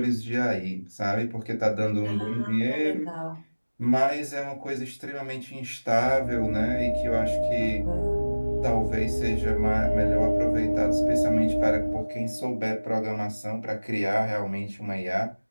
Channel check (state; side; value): inverted; both; correlation -1.00